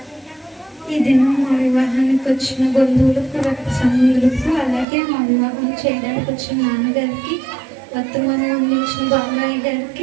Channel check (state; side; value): drops out; left; at 4.9 s